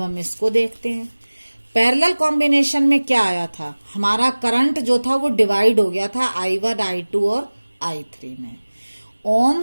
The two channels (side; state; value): both; inverted; correlation -1.00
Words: हम इसको देखते हैं। पैरेलल कॉम्बिनेशन में क्या आया था, हमारा करंट जो था वो डिवाइड हो गया था I1 I2 और I3 में।